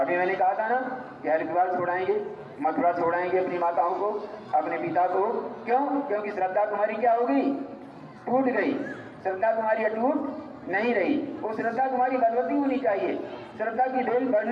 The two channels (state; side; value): identical; both; correlation 1.00